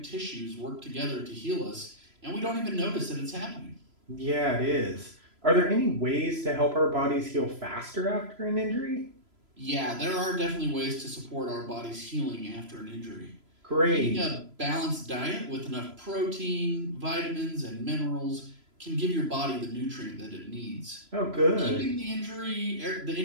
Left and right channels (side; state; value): left; late; 3.0 ms